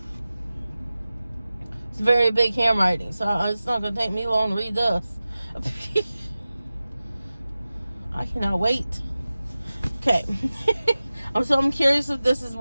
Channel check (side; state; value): both; inverted; correlation -0.96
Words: It's very big handwriting, so it's not going to take me long to read this. I cannot wait. Okay. I'm curious if this is